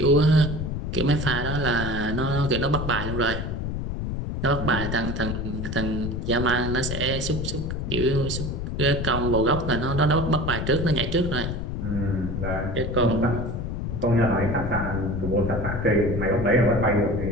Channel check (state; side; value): noise; left; rumble, 3 dB below the sound